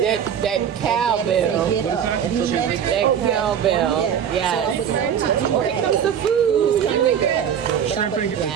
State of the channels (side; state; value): left; quieter; 8.5 dB